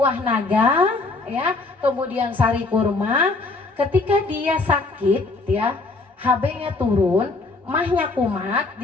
naga, ya, kemudian sari kurma. Ketika dia sakit, ya, HB-nya turun, mahnya kumat,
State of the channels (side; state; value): right; quieter; 3.5 dB